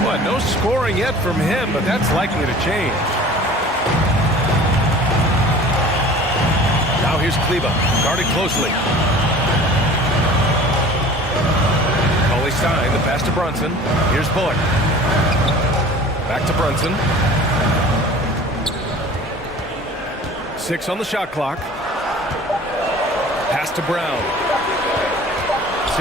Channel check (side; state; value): both; normal; correlation 0.44